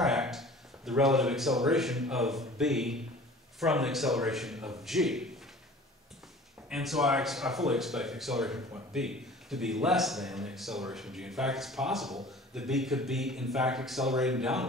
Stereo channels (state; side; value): normal; both; correlation 0.45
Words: the relative acceleration of b from the acceleration of g. And so I fully expect the acceleration of point b to be less than the acceleration of g. In fact, it's possible that b could be, in fact, accelerating